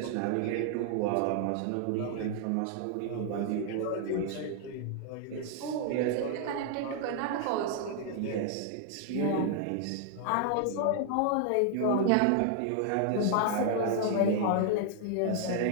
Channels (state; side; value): different; both; correlation 0.00